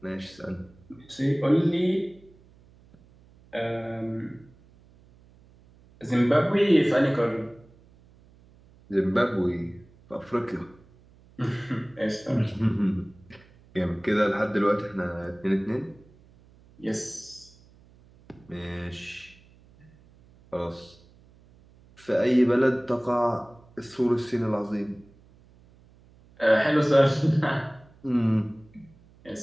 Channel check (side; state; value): right; noise; hum, 27 dB below the sound